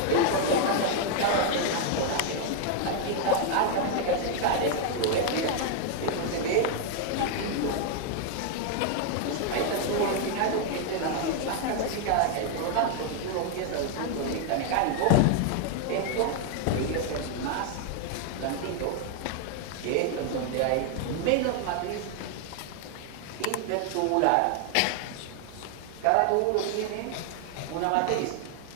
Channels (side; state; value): both; different; correlation 0.00